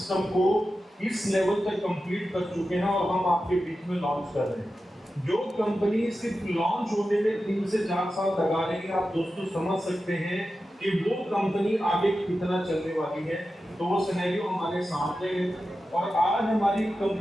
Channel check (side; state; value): both; normal; correlation 0.92